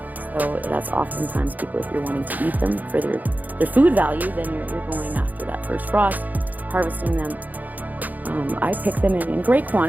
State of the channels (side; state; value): left; late; 0.082 ms